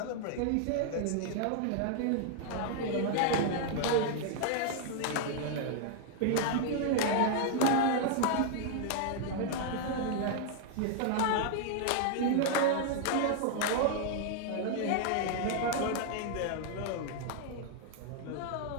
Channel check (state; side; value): different; both; correlation 0.00